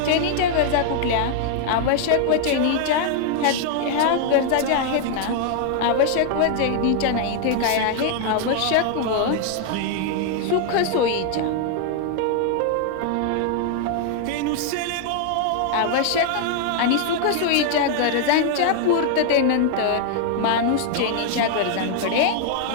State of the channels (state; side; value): different; both; correlation 0.00